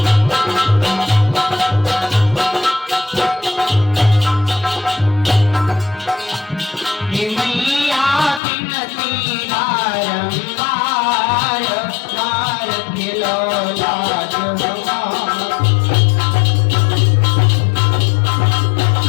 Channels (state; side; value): drops out; right; at 8.4 s